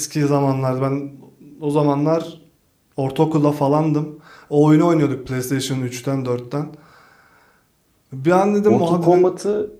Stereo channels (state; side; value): identical; both; correlation 1.00